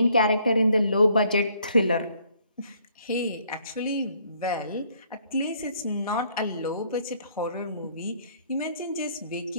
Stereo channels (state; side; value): inverted; both; correlation -0.65